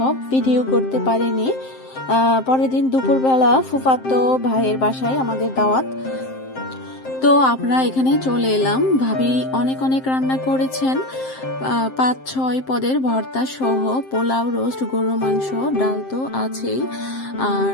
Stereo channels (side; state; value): right; late; 7.6 ms